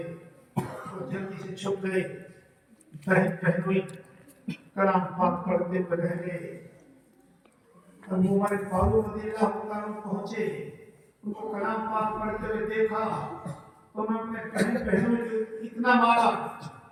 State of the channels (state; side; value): identical; both; correlation 1.00